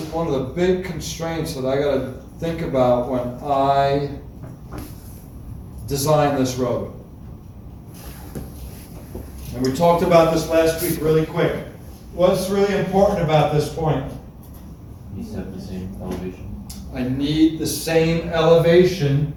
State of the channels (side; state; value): both; identical; correlation 1.00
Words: one of the big constraints that I gotta think about when I design this road? And we talked about this last week really quick. What's really important about this point? You have the same elevation. I need the same elevation